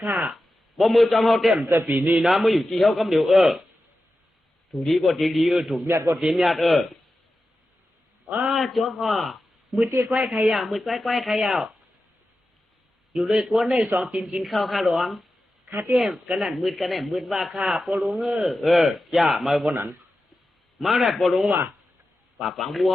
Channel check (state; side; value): normal; both; correlation 0.92